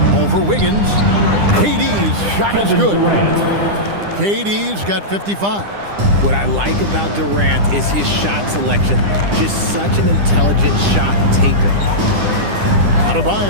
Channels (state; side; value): late; left; 9.9 ms